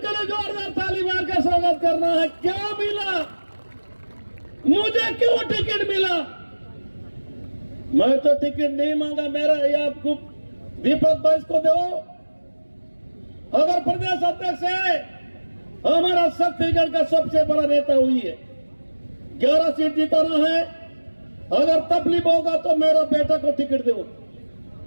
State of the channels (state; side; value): inverted; both; correlation -1.00